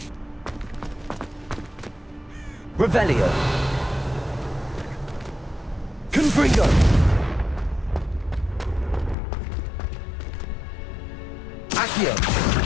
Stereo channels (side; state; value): right; drops out; at 9.2 s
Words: Revelio! Confringo! Accio!